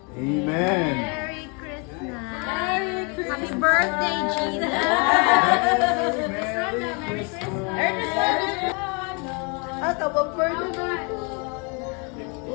Amen. Merry Christmas. Merry Christmas. Happy birthday, Jesus. Merry Christmas.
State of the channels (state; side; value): quieter; right; 33.8 dB